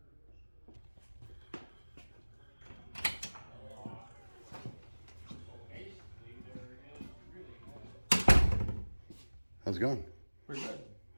How's it going? Pretty good.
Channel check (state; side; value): inverted; both; correlation -1.00